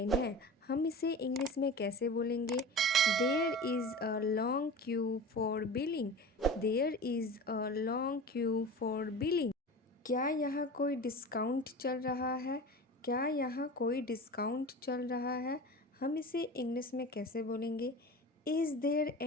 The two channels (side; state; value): both; normal; correlation 0.33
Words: है। हम इसे इंग्लिश में कैसे बोलेंगे? There is a long queue for billing. There is a long queue for billing. क्या यहाँ कोई डिस्काउंट चल रहा है? क्या यहाँ कोई डिस्काउंट चल रहा है? हम इसे इंग्लिश में कैसे बोलेंगे? Is there